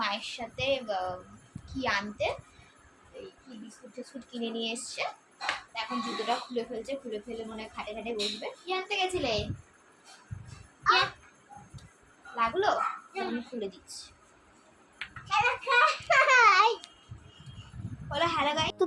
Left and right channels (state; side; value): identical; both; correlation 1.00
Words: মায়ের সাথে কি আনতে, এই কি বিস্কুট টিস্কুট কিনে নিয়ে এসছে। এখন জুতোটা খুলে ফেলছে, খুলে ফেলে মনে হয় খাটে খাটে বসবে। কি আনতে গেছিলে? লাগলো? আমি খুলে দিচ্ছি। তো